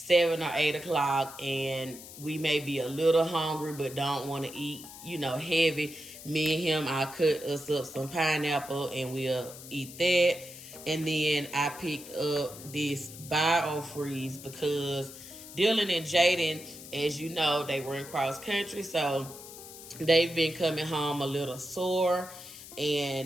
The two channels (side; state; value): left; noise; hiss, 15 dB below the sound